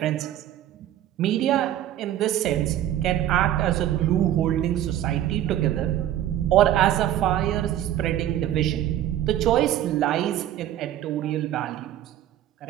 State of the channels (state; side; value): quieter; left; 12.3 dB